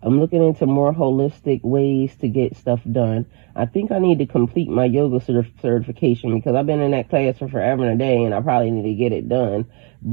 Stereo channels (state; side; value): quieter; left; 33.8 dB